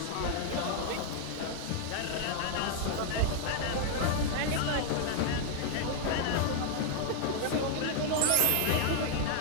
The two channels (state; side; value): different; both; correlation 0.00